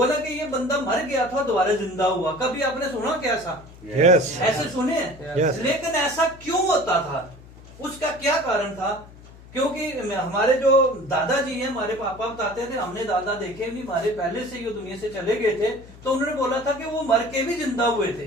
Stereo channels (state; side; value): noise; left; hum, 20 dB below the sound